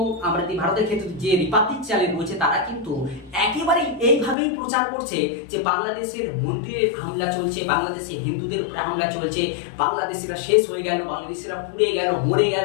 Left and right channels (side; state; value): right; drops out; at 4.4 s